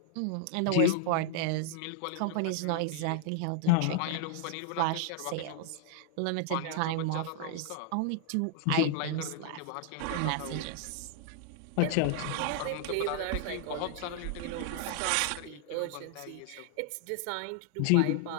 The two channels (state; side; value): different; both; correlation 0.00